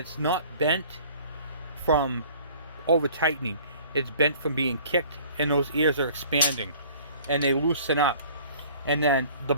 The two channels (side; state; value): both; inverted; correlation -0.50